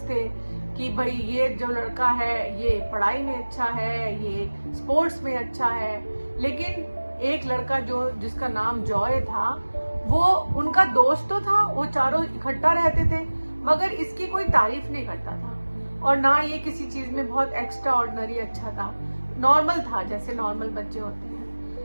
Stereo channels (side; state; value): both; inverted; correlation -1.00